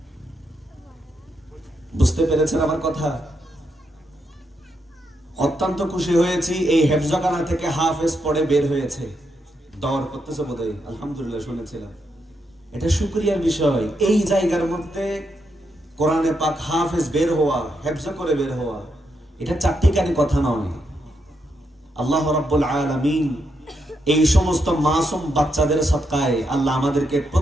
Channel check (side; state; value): both; normal; correlation 0.81